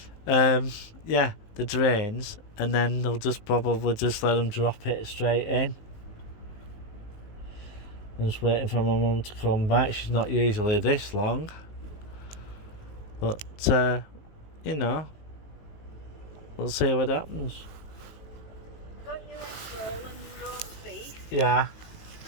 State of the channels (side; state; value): right; late; 19 ms